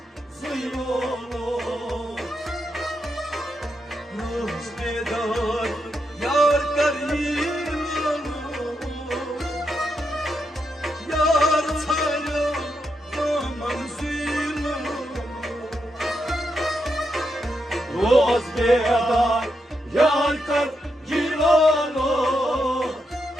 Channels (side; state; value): both; normal; correlation 0.83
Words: Roz bedar yar karino Yar saya kaman suylo रोज बेदार यार कर गिलो